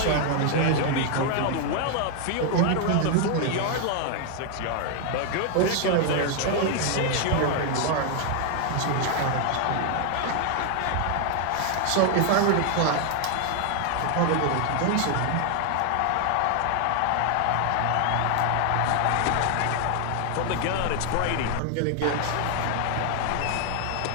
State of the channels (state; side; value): different; both; correlation 0.00